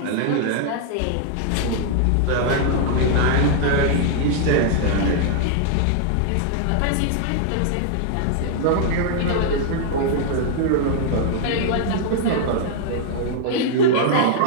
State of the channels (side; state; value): both; different; correlation 0.00